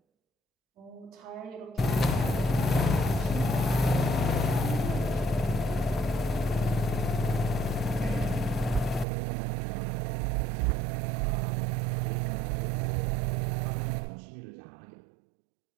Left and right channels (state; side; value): drops out; left; at 9.1 s